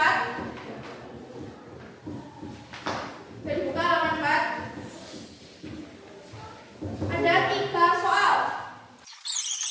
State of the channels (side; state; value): both; identical; correlation 1.00